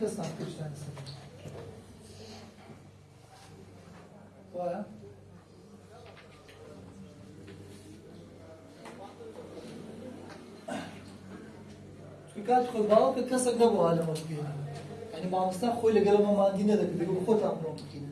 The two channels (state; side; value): identical; both; correlation 1.00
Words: صنع كل شيء وايا كانت خو باو كسر نبو على مكينة يعني ما مستان خوي لقلب ما عندنا ذاك بيقول خو تعملوا مكينة